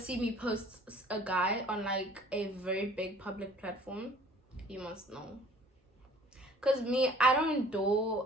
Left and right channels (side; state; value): both; normal; correlation 0.51